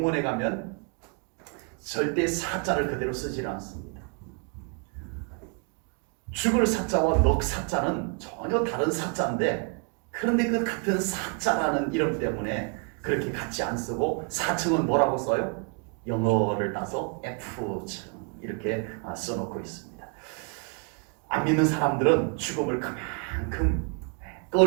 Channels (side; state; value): left; quieter; 37.5 dB